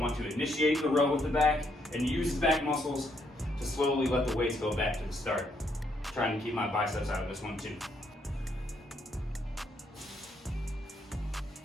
to initiate the row with the back and use the back muscles to slowly let the weights go back to the start. Trying to keep my biceps out of this one too.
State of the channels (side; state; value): both; normal; correlation 0.74